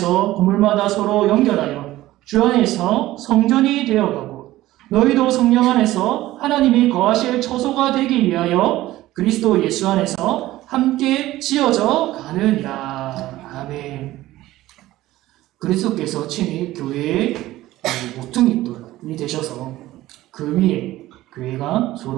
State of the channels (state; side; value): quieter; left; 16.1 dB